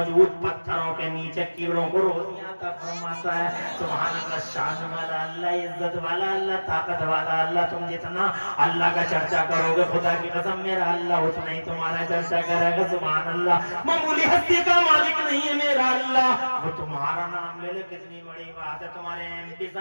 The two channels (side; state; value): both; inverted; correlation -1.00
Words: پتھروں کے نیچے کیڑوں کو روزیاں عطا فرماتا ہے۔ سبحان اللہ، شان والا اللہ، عزت والا اللہ، طاقت والا اللہ، تم جتنا اللہ کا چرچا کرو گے خدا کی قسم میرا اللہ اتنا ہی تمہارا چرچا کرے گا۔ سبحان اللہ، معمولی ہستی کا مالک نہیں ہے میرا اللہ، وہ تمہارا نام لے لے کتنی بڑی بات ہے، تمہارے ایم پی